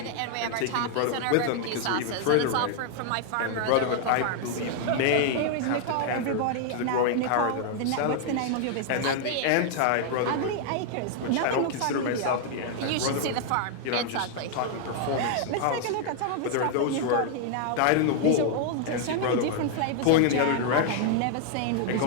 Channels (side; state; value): both; different; correlation 0.00